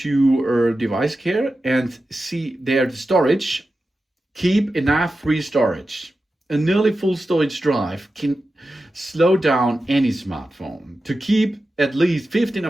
device care and see there the storage. Keep enough free storage. A nearly full storage drive can slow down any smartphone. To keep at least 15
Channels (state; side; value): normal; both; correlation 0.92